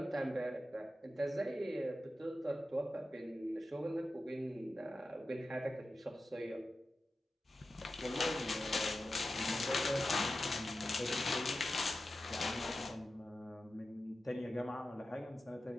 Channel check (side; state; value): both; normal; correlation 0.92